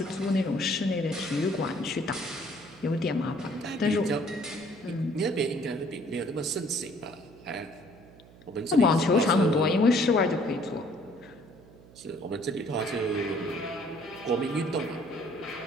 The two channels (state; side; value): noise; right; hum, 23 dB below the sound